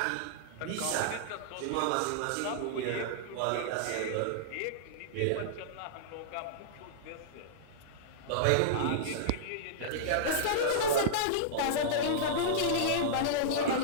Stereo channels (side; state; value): both; different; correlation -0.02